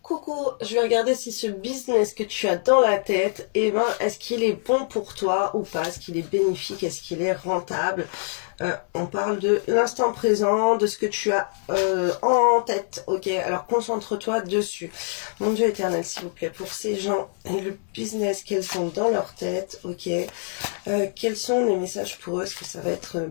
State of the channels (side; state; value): right; silent; digital silence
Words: Coucou, je vais regarder si ce business que tu as dans la tête, est-ce qu'il est bon pour toi ou pas? Est-ce qu'il est bénéfique? Est-ce qu'il est rentable? On parle de l'instant présent, de ce que tu as en tête, ok? Alors concentre-toi dessus. Mon Dieu éternel, s'il vous plaît, pour ces gens et le business qu'elles ont dans leur tête, ok? Quels sont les messages pour eux? Est-ce que ça va être